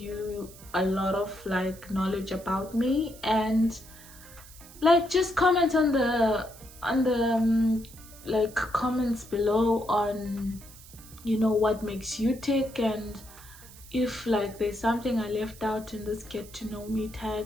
a lot of knowledge about me, and just comment on the comments below on what makes you tick, and if there's something I left out in this get to know me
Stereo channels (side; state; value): right; noise; hiss, 20 dB below the sound